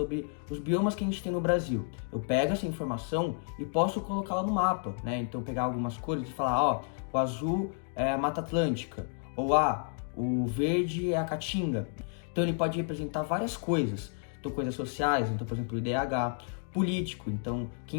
os biomas que a gente tem no Brasil. Eu pego essa informação e posso colocá-la no mapa, né? Então, pegar algumas cores e falar, ó, o azul é a Mata Atlântica, ou o verde é a Caatinga. Então, ele pode representar várias coisas. Então, coisas sociais, então, por exemplo, o IDH, político, então,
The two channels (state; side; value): silent; right; 57 dB below the other